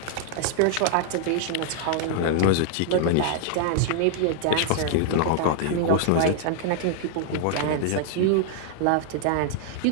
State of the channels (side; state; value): both; different; correlation 0.00